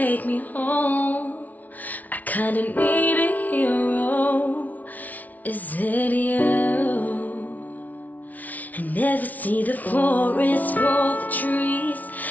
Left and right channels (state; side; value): late; right; 0.075 ms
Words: me home. I kinda need a hero, is it you? I never see the forest for the trees.